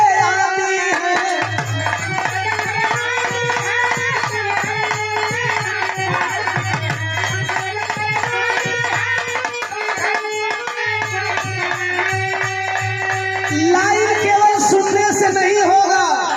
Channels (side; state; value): both; identical; correlation 1.00